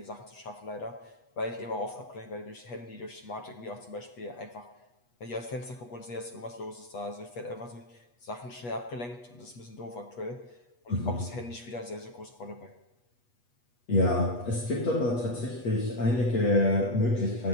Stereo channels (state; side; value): late; right; 8.3 ms